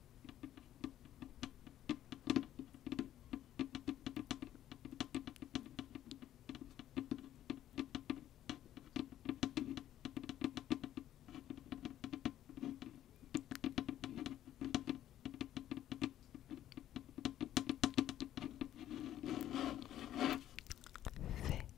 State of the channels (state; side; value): quieter; right; 12.1 dB